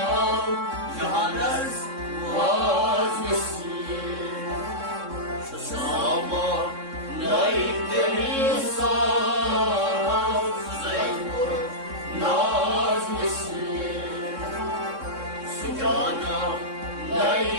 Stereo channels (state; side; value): late; left; 3.6 ms